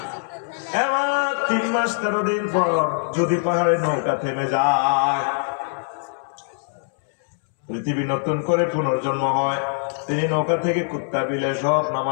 এবার 3 মাস 13 দিন পর যদি পাহাড়ে নৌকা থেমে যায়, পৃথিবী নতুন করে পুনর্জন্ম হয়, তিনি নৌকা থেকে কুত্তা বিলে সব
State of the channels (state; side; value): silent; right; 64 dB below the other